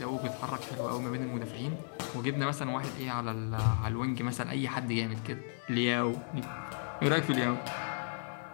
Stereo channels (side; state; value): right; silent; digital silence